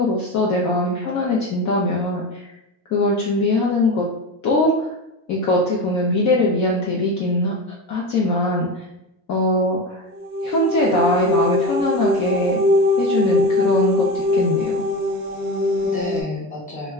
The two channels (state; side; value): normal; both; correlation 0.23